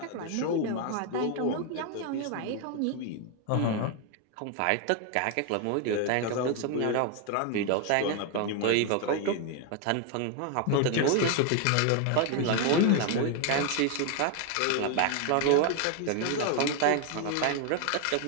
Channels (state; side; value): different; both; correlation 0.01